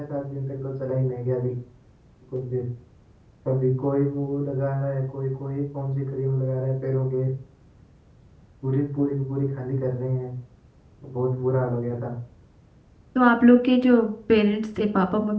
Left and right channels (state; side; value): identical; both; correlation 1.00